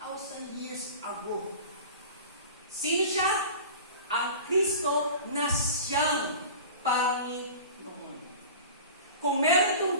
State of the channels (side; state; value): both; inverted; correlation -0.37